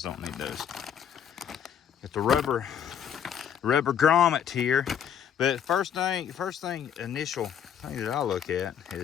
don't need those. Got the rubber grommet here. But initial thing that I look at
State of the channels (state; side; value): quieter; right; 8.8 dB